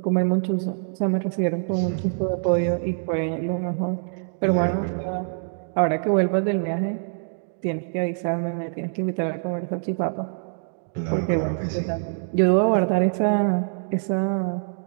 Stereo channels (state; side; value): silent; left; digital silence